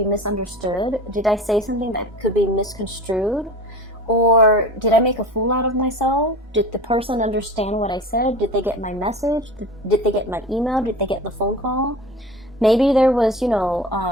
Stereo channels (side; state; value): both; normal; correlation 0.35